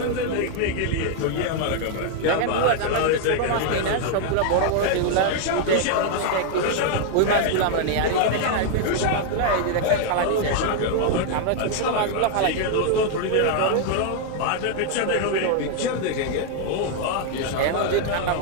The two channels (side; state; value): both; different; correlation 0.00